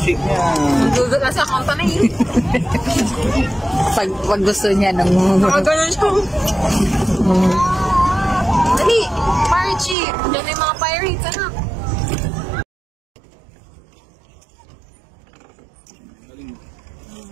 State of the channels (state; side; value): drops out; left; at 10.0 s